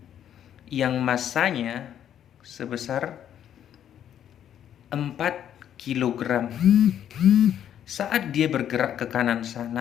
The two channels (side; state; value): right; quieter; 10.0 dB